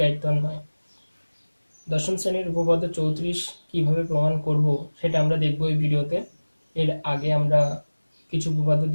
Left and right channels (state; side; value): inverted; both; correlation -1.00